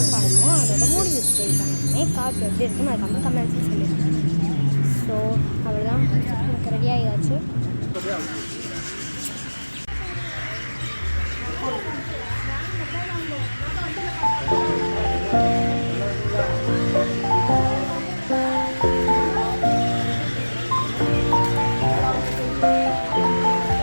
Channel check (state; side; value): inverted; both; correlation -1.00